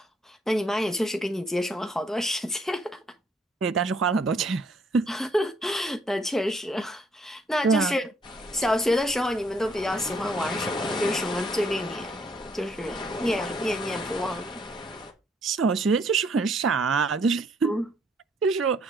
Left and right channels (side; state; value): both; normal; correlation 0.66